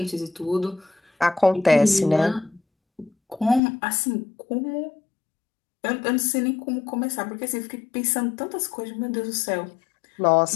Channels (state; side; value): drops out; right; at 3.6 s